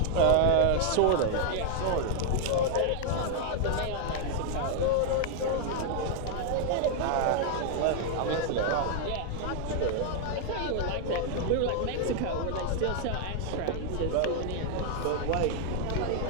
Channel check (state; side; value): different; both; correlation 0.00